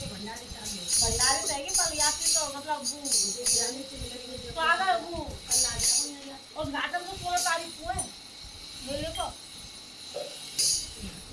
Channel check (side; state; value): both; identical; correlation 1.00